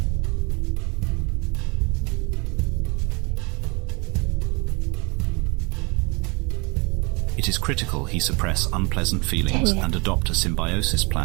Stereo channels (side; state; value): left; quieter; 28.9 dB